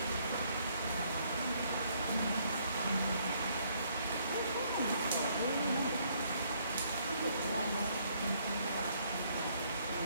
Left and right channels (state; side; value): inverted; both; correlation -0.67